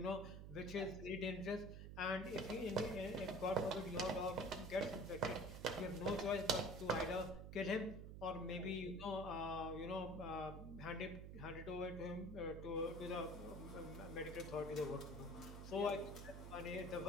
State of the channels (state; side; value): noise; right; hum, 9 dB below the sound